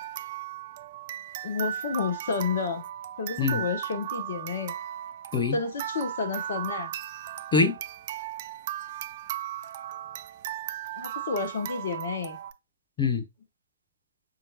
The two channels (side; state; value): both; inverted; correlation -0.37